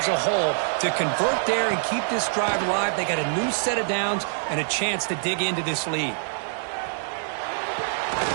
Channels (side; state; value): left; silent; digital silence